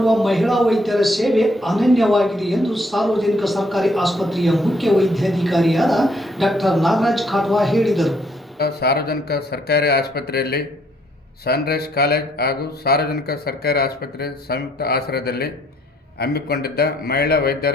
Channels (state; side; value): normal; both; correlation 0.67